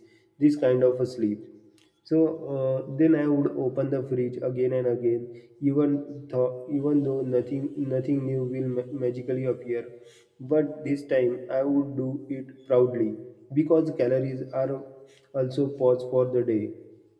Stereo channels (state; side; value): identical; both; correlation 1.00